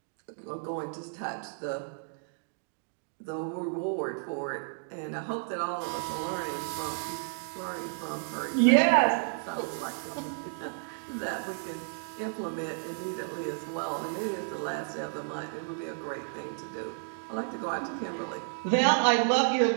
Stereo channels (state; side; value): silent; left; digital silence